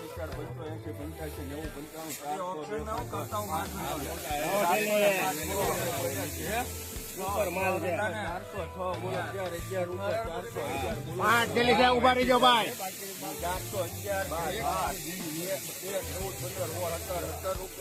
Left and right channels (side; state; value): both; identical; correlation 1.00